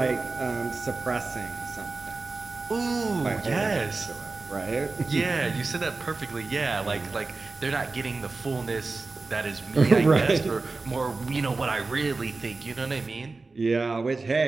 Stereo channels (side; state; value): left; quieter; 3.7 dB